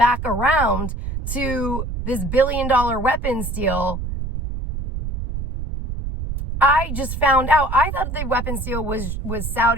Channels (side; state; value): right; noise; rumble, 5 dB below the sound